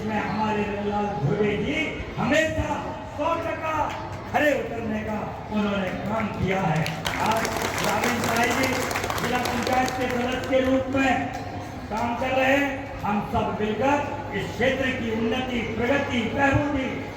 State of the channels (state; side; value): identical; both; correlation 1.00